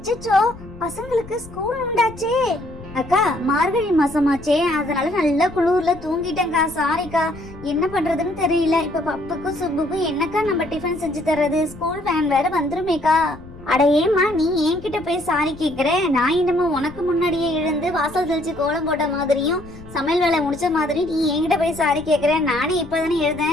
பசங்களுக்கு ஸ்கூல் உண்டாச்சே. அக்கா மார்கழி மாசமாச்சே, அதனால நல்லா குளூர்ல தூங்கிட்டேன்க்கா. சாரிக்கா. என்ன பண்றதுன்னு தெரியல. இப்ப பப்புக்கும் சுப்புக்கும் என்னக்கா நம்ம டிஃபன் செஞ்சு தர்றது? ஸ்கூல் வேன் வேற வந்துருமேக்கா. அட ஏமா நீ என்கிட்ட போய் சாரி கேக்குற? நான் என்னமோ உனக்கு முன்னாடியே எழுந்து வாசல் தெளிச்சு கோலம் போட்ட மாதிரியும் சமையல் வேலை முடிச்ச மாதிரி நீ என்கிட்ட போய் சாரி கேக்குற. நானே இப்பதானே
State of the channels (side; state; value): left; noise; rumble, 17 dB below the sound